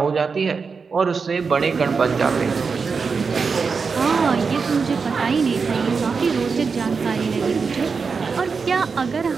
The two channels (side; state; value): left; quieter; 5.1 dB